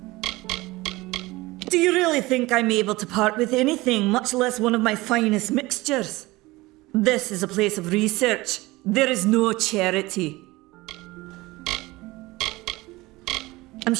Do you really think I'm able to part with anything, much less one of my finest mixtures? This is a place of research. There is no charity. I'm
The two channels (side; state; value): left; quieter; 20.6 dB